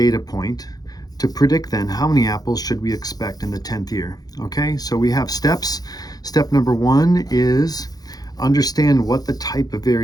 point to predict then how many apples should we expect in the 10th year. Okay, so we have steps. Step number 1 is understand what the type of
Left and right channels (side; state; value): right; late; 0.19 ms